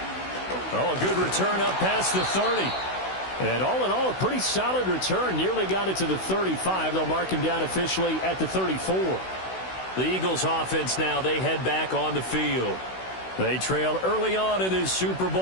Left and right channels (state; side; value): late; right; 16 ms